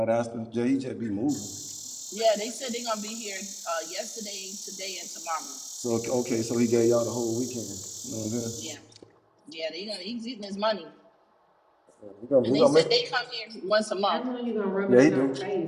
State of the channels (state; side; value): identical; both; correlation 1.00